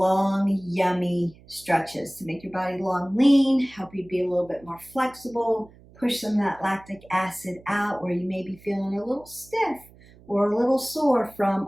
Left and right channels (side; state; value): right; noise; hum, 24 dB below the sound